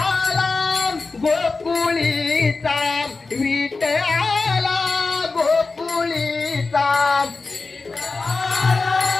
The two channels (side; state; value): right; quieter; 3.9 dB